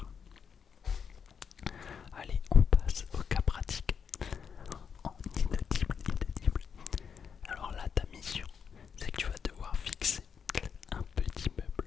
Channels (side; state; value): right; quieter; 6.8 dB